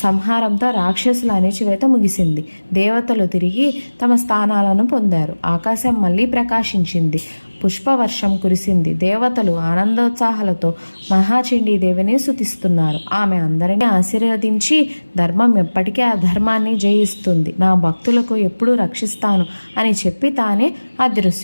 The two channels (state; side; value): inverted; both; correlation -1.00